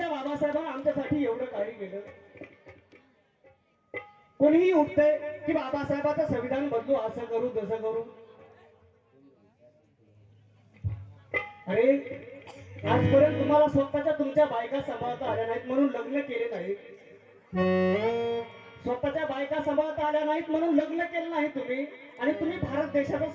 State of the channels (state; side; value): identical; both; correlation 1.00